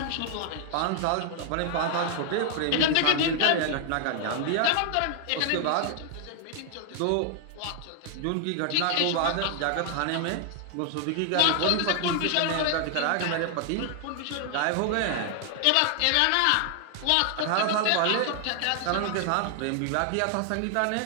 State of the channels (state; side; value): different; both; correlation 0.00